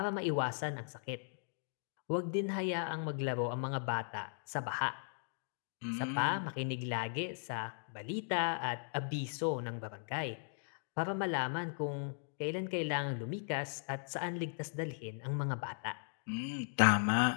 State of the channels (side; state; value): right; silent; digital silence